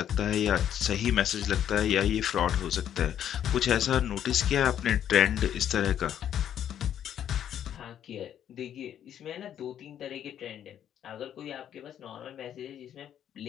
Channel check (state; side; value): quieter; right; 10.0 dB